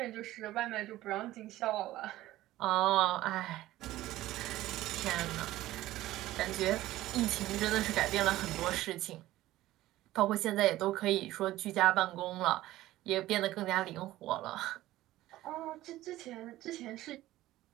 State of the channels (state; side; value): quieter; left; 15.8 dB